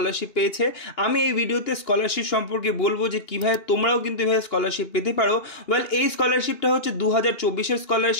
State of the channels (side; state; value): right; late; 2.8 ms